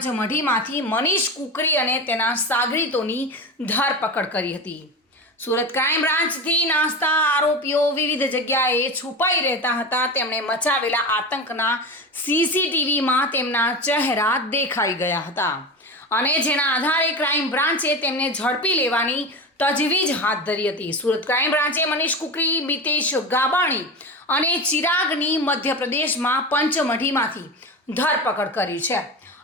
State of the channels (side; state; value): both; normal; correlation 0.24